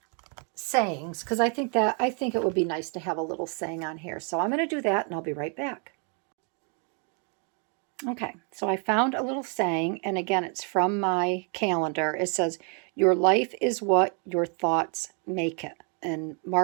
sayings, because I think it would be nice to have a little saying on here. So I'm going to do that, and I'll be right back. Okay, so I found a little saying, and again, it's from my calendar. It says, "Your life is what your thoughts make it." And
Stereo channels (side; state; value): left; quieter; 39.6 dB